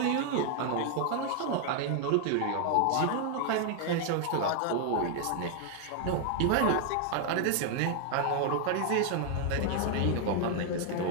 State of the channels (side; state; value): both; different; correlation 0.00